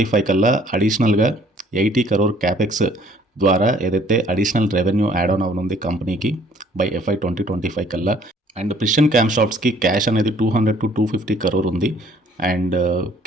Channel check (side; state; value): both; normal; correlation 0.58